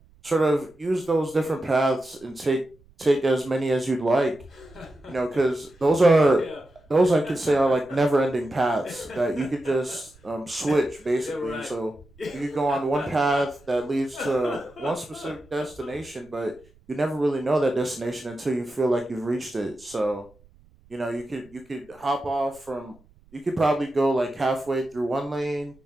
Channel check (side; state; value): right; noise; rumble, 29 dB below the sound